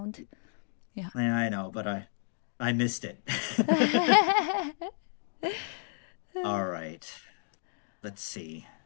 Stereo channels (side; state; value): right; silent; digital silence